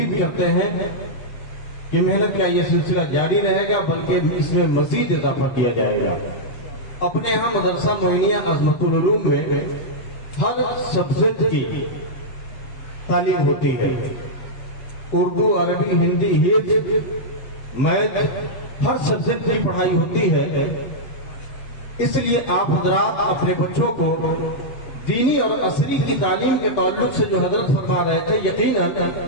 करते हैं कि मेहनत का ये सिलसिला जारी रहेगा, बल्कि इसमें मजीद इजाफा किया जाएगा। अपने यहाँ मदरसा मोइनिया अज़मतुल उलूम में हर सब्जेक्ट की तालीम होती है, उर्दू, अरबी, हिंदी, हिफ्ज़, मैथ, हर सब्जेक्ट की पढ़ाई होती है। इसलिए आप हजरात अपने बच्चों को दीनी और असरी की तालीम के ताल्लुक से जो हजरत फरमा रहे थे, यकीनन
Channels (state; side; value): late; right; 8.2 ms